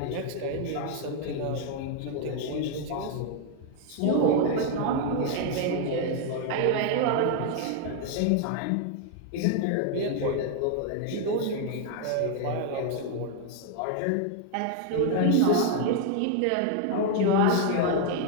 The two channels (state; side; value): different; both; correlation 0.00